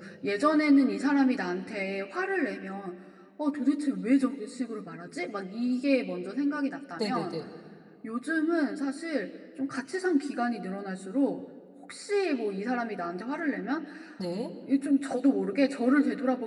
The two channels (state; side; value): identical; both; correlation 1.00